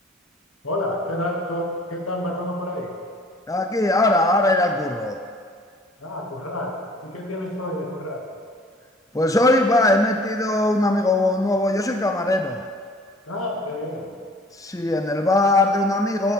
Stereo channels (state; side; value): normal; both; correlation 0.52